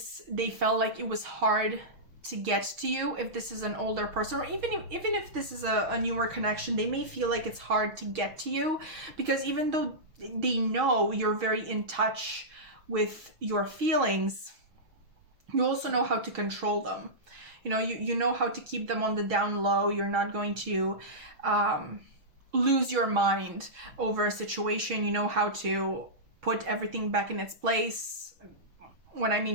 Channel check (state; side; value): late; left; 6.1 ms